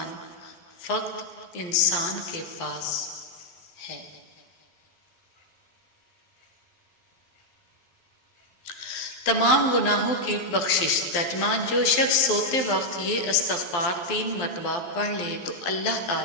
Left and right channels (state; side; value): late; right; 12 ms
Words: فقط انسان کے پاس ہے۔ تمام گناہوں کی بخشش۔ ترجمہ: جو شخص سوتے وقت یہ استغفار 3 مرتبہ پڑھ لے تو اللہ